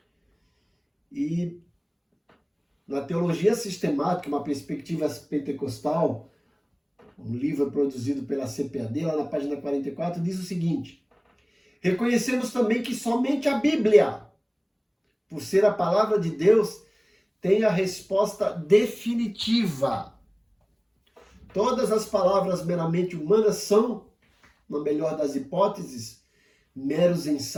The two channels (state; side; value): identical; both; correlation 1.00